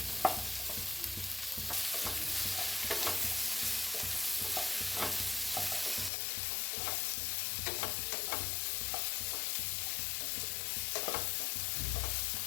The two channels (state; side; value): drops out; right; at 6.1 s